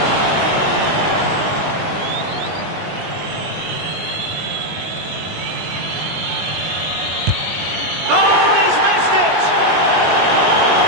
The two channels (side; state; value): left; late; 19 ms